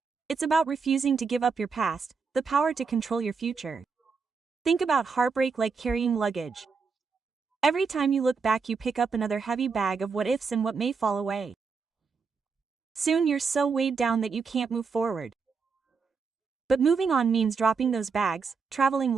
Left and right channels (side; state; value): left; quieter; 5.2 dB